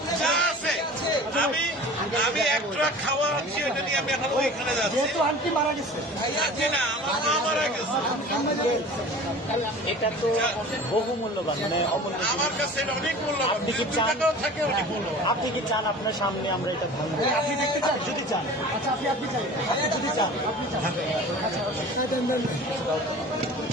যা আছে আমি একটা খাওয়া আনছি, এটা নিয়ে আমি এখন ওইখানে যাচ্ছি। আন্টি মারা গেছে, আজকে না, আমার মা মারা গেছে। এটা তো বহু মূল্যবান, মানে আমার কাছে এটা অনেক মূল্যবান। আপনি কি 2 চান? টাকাও থাকে অনেক মূল্যবান। আপনি কি চান আপনার সামনে আমরা এটা ভাঙবো? আপনি দেখতে চান? যদি চান, আচ্ছা আপনি চান, আপনি যদি চান, আপনি চান, আচ্ছা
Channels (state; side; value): normal; both; correlation 0.40